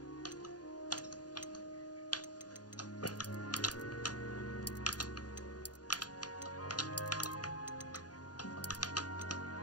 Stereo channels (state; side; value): late; right; 0.69 ms